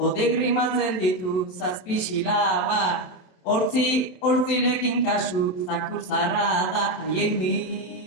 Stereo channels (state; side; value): late; right; 27 ms